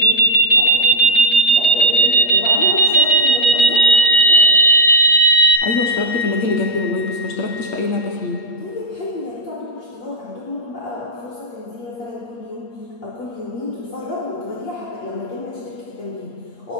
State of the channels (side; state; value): right; late; 8.6 ms